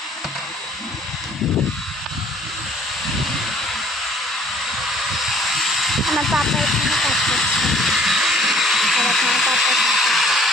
আমার পাপা এখানে কাজ করছে, আর আমার পাপা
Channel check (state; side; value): normal; both; correlation 0.57